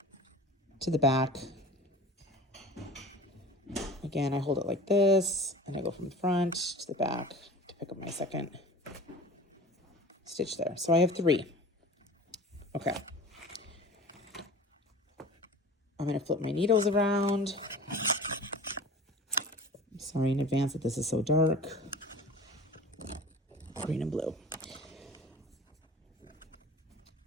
to the back. Again, I hold it like this, and I go from the front to the back to pick up my second stitch there. So I have 3. Okay. I'm going to flip my needles around. I'm sorry in advance that this is so dark. Green and blue.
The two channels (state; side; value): normal; both; correlation 0.40